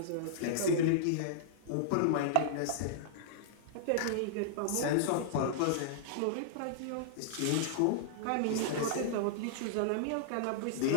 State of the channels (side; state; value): both; different; correlation -0.01